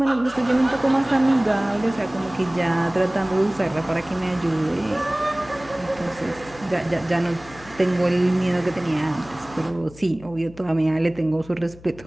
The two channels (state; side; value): noise; left; hum, 20 dB below the sound